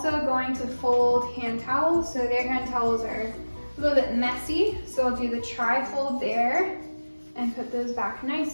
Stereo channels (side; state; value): both; inverted; correlation -1.00